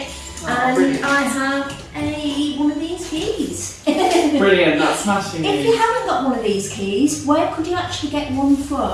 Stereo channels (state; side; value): identical; both; correlation 1.00